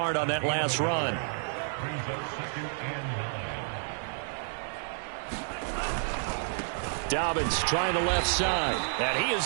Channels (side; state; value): left; silent; digital silence